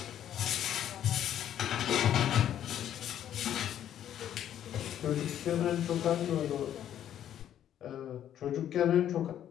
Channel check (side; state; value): right; quieter; 10.7 dB